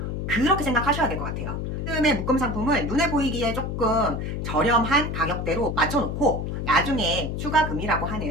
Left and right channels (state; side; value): noise; left; hum, 3 dB below the sound